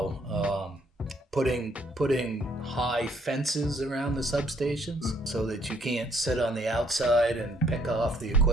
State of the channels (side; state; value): both; normal; correlation 0.66